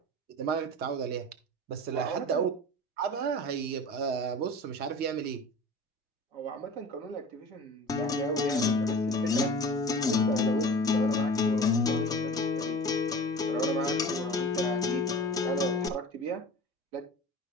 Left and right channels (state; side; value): normal; both; correlation 0.38